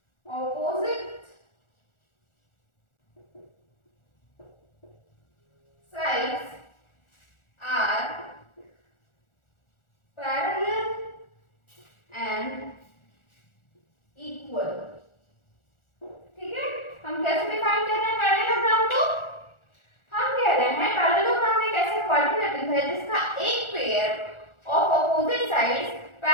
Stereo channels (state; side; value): late; right; 1.4 ms